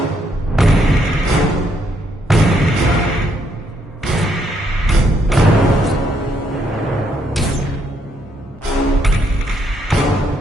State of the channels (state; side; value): normal; both; correlation 0.73